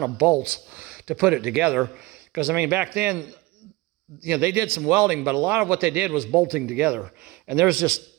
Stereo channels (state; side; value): quieter; left; 21.1 dB